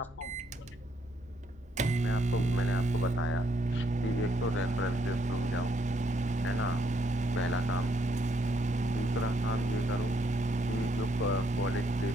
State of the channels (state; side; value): normal; both; correlation 0.73